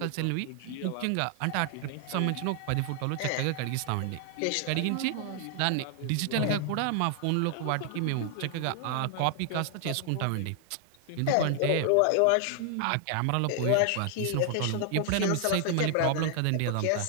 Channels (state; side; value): different; both; correlation 0.00